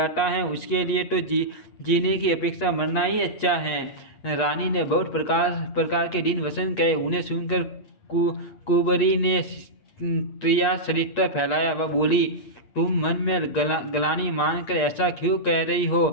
है, उसके लिए तो जीने की अपेक्षा मरना ही अच्छा है। रानी ने बहुत प्रकार के दिन वसन कहे। उन्हें सुनकर कुबरी ने त्रिया चरित्र फैलाया। वह बोली, तुम मन में गलानी मानकर ऐसा क्यों कह रही हो?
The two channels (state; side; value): late; right; 8.3 ms